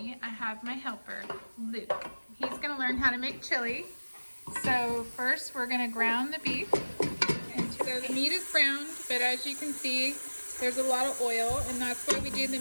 I have my helper, Luke. He's gonna learn how to make chili. So first we're gonna ground the beef. And so the meat is browned, but as you can see, there's a lot of oil, and that's why we do the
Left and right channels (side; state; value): both; inverted; correlation -1.00